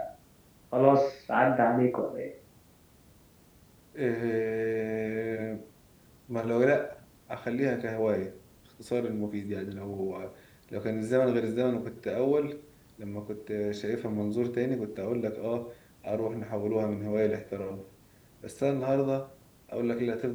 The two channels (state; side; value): identical; both; correlation 1.00